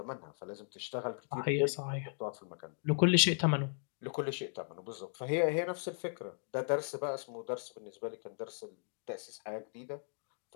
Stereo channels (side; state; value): right; silent; digital silence